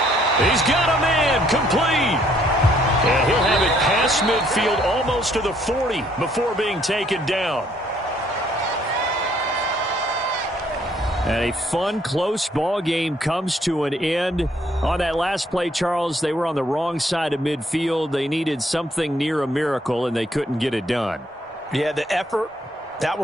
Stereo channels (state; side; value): normal; both; correlation 0.66